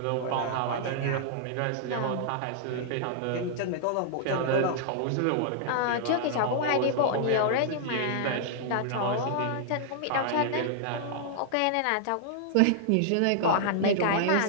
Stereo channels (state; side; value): different; both; correlation -0.01